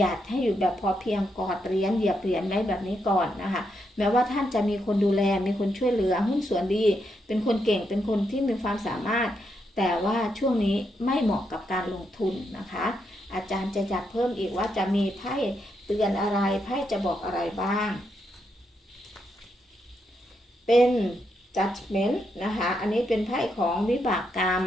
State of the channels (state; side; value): normal; both; correlation 0.80